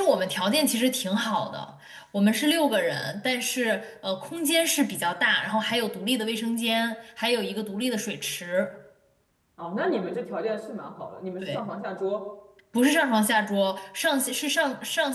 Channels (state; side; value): identical; both; correlation 1.00